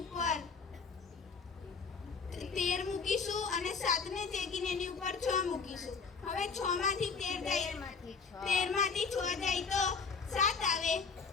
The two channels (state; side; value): quieter; right; 5.2 dB